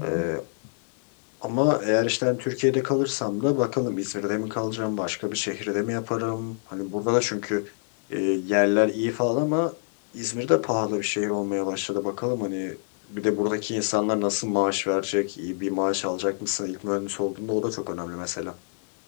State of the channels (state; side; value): silent; right; 61 dB below the other